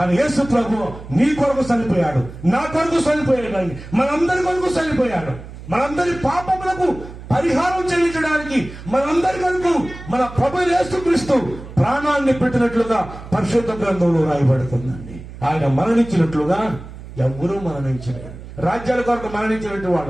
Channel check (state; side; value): noise; right; hum, 14 dB below the sound